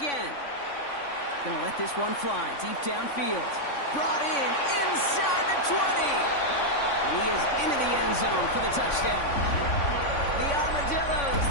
Gonna let this one fly deep downfield. Brought in inside the 20. And he is into the end zone for the touchdown. The Armadillos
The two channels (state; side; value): late; right; 3.5 ms